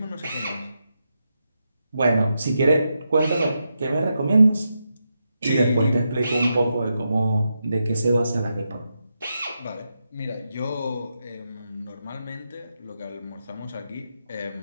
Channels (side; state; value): both; inverted; correlation -0.86